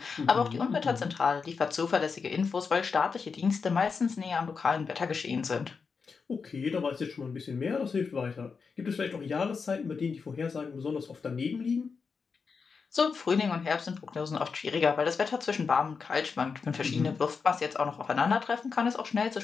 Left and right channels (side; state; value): right; quieter; 5.3 dB